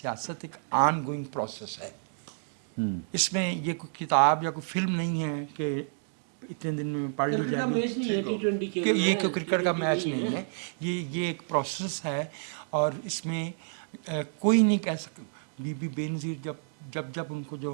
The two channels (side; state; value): left; silent; digital silence